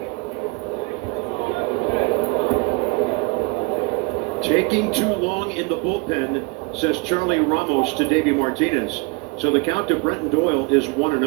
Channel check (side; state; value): left; quieter; 28.2 dB